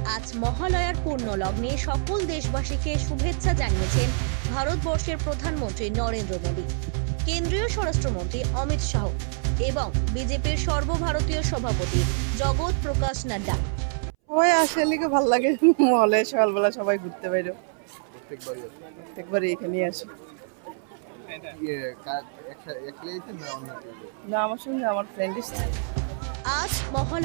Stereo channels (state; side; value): silent; left; 61 dB below the other